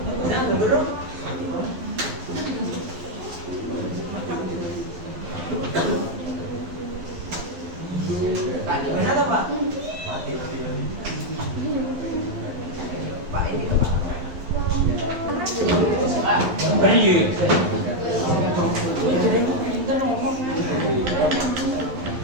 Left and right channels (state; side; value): late; left; 11 ms